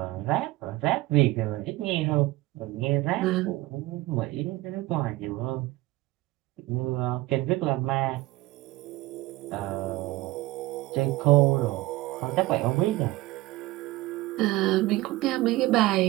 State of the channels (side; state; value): left; quieter; 19.0 dB